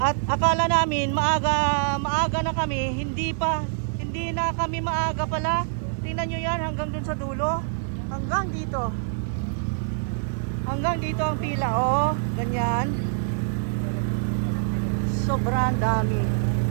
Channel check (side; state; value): left; silent; 62 dB below the other